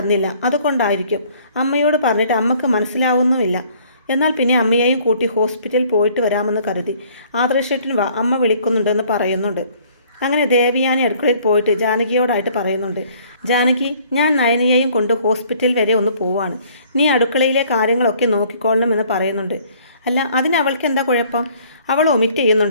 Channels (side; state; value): both; inverted; correlation -0.58